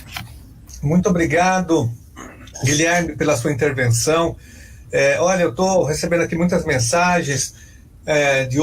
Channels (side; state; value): both; identical; correlation 1.00